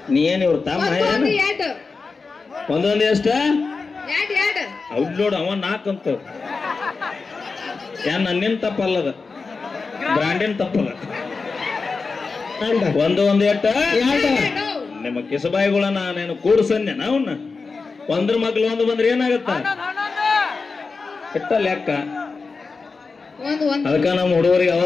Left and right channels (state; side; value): quieter; right; 4.4 dB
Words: ನೀ ಏನ್ ಇವ್ರು ತಮ್ಮ ಒಂದೊಂದು ಎಷ್ಟ? ಅವ್ರು ನೋಡು ಅವ 4 ಅಂತ. ಏನ್ ನನ್ನಿನ್ ತಪ್ಪಲ್ಲದ, ಬ್ರಾಂಡಿನ ತಪ್ಪಲ್ಲ. ಒಂದು 8 ನಿಮ್ಮ ಕಿಸಬಾಯಿಗಳನ್ನ ನಾನು ಕೂಡ್ಸನ್ಯ ನಾವನ್ನ. ಒಂದ್ರ ಮಗ್ಳು ಒಂದು ಬಂದ್ರೆ ಏನಾಗತ್ತ? ಇಟ್ಟ ಲೆಕ್ಕ. ಅದಕ್ಕ ನಮ್ಮ ಹುಡುಗರಿಗೆ